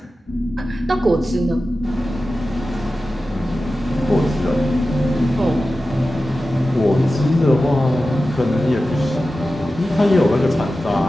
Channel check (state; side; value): normal; both; correlation 0.94